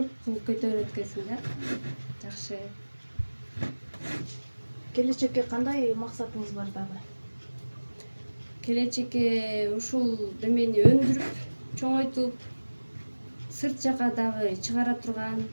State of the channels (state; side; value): inverted; both; correlation -1.00